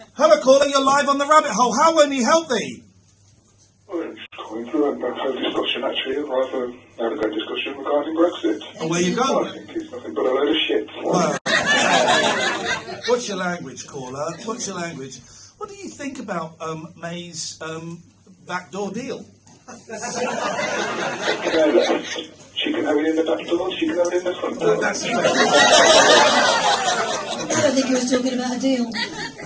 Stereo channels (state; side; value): identical; both; correlation 1.00